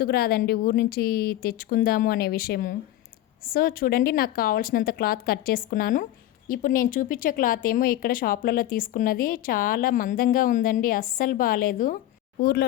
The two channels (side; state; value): right; quieter; 13.8 dB